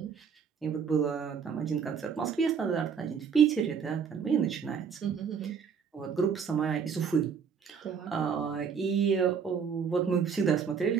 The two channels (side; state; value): left; quieter; 6.6 dB